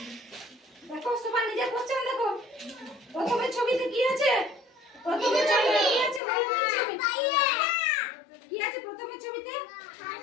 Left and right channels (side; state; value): right; drops out; at 6.2 s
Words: দেখো সবাই নিজের কোশ্চেন দেখো। প্রথমের ছবিতে কি আছে? প্রথমের ছবিতে কি আছে? কি আছে প্রথমের ছবিতে?